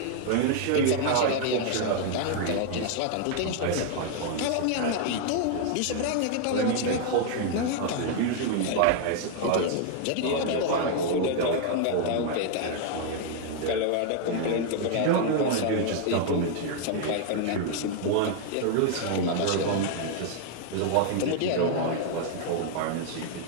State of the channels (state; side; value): different; both; correlation 0.00